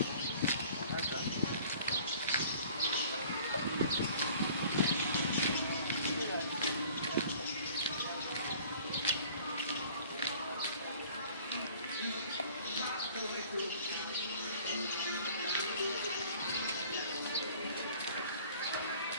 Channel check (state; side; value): inverted; both; correlation -0.50